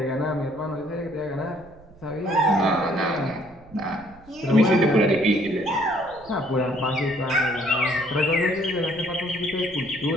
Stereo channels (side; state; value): right; noise; rumble, 24 dB below the sound